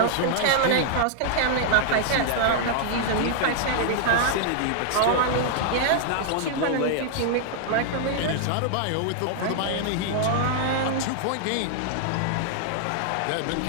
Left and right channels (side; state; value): both; different; correlation -0.01